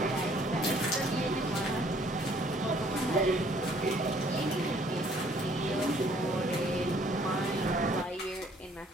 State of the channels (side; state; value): both; normal; correlation 0.61